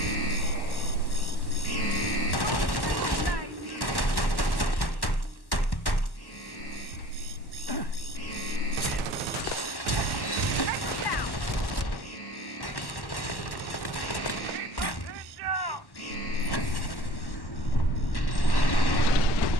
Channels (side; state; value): right; late; 1.1 ms